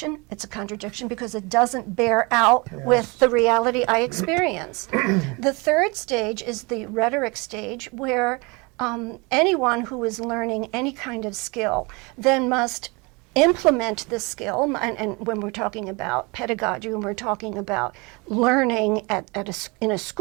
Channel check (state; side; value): quieter; left; 27.9 dB